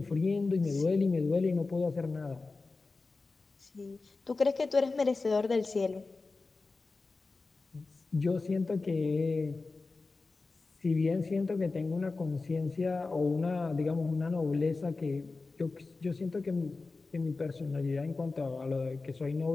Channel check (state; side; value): quieter; right; 3.8 dB